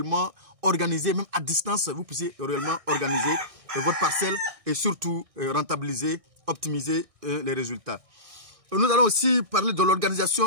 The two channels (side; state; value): left; late; 1.6 ms